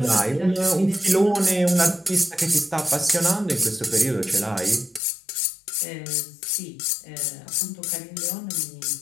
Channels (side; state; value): right; drops out; at 5.0 s